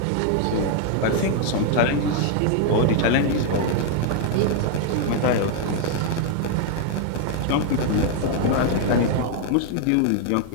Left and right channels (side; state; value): both; different; correlation 0.00